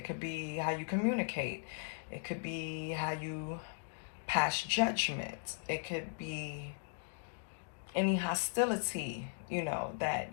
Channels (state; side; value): silent; right; digital silence